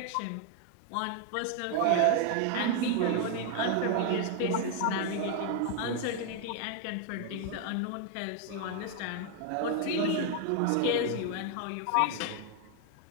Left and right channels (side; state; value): both; different; correlation 0.00